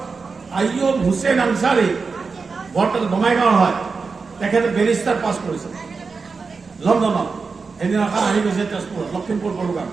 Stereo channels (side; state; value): left; quieter; 4.7 dB